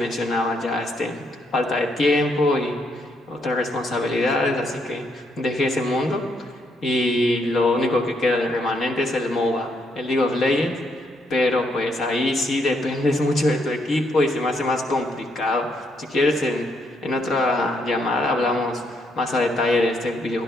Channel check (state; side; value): normal; both; correlation 0.75